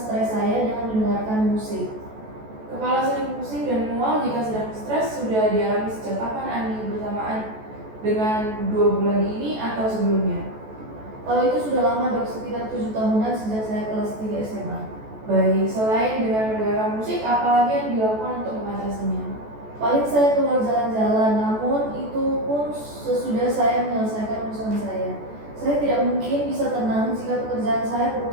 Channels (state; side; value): late; left; 14 ms